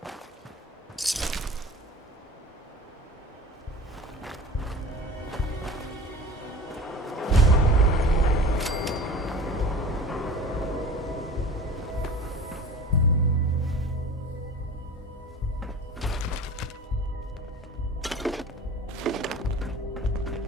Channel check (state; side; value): normal; both; correlation 0.39